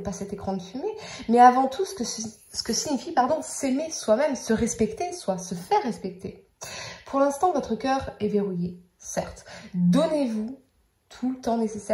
cet écran de fumée, mais avant tout ce que signifie s'aimer soi-même, se respecter, soit se faire respecter. Pour l'instant, votre cœur est verrouillé, certes. Donnez-vous tout le temps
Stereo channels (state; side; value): identical; both; correlation 1.00